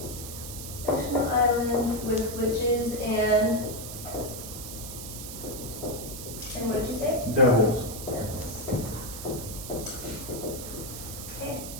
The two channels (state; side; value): noise; right; hiss, 9 dB below the sound